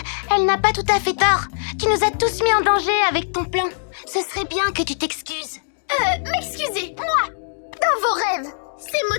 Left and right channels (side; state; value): right; silent; digital silence